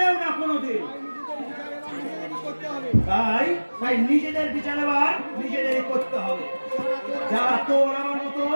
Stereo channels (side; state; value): both; inverted; correlation -1.00